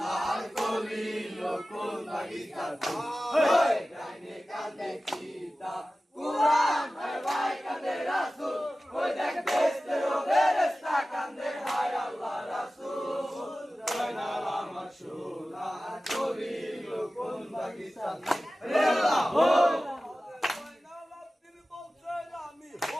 কলি কোন বাগিচার ফুল কান্দে কান্দে কিতাব কুরআন আর ভাই কান্দে রাসূল ওই দেখ বেস্তেরো বেরেস্তা কান্দে হায় আল্লাহ রাসূল জয়নাল আমার সোনার কলি কোন বাগিচার ফুল হে আল্লাহ হো আমি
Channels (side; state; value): both; normal; correlation 0.96